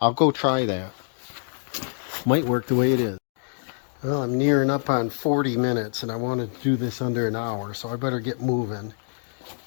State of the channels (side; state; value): right; silent; digital silence